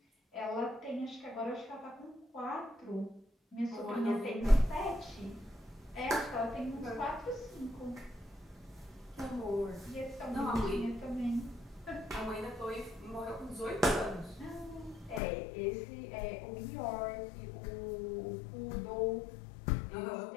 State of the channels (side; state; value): right; drops out; at 15.2 s